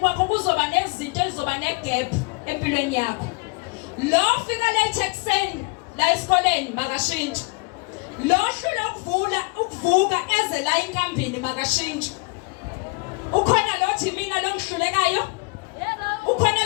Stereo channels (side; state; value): right; quieter; 30.1 dB